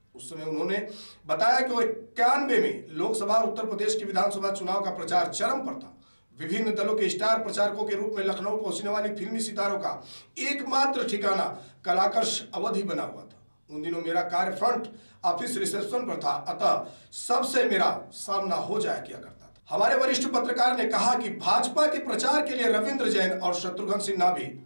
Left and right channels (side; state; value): both; inverted; correlation -1.00